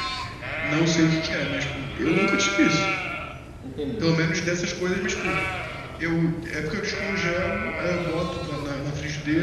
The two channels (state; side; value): identical; both; correlation 1.00